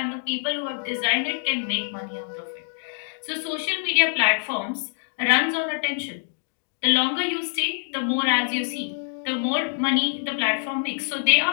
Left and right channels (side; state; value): right; silent; digital silence